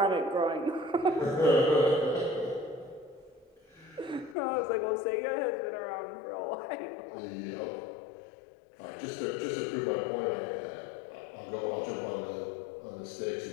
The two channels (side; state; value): right; drops out; at 4.4 s